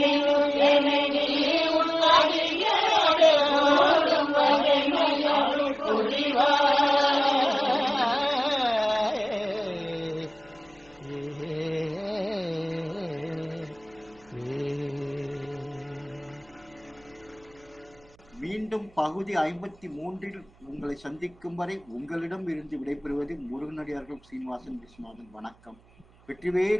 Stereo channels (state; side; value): noise; right; hum, 29 dB below the sound